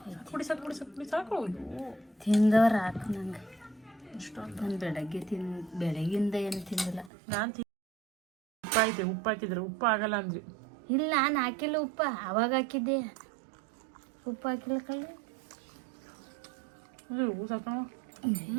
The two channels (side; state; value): left; drops out; at 7.1 s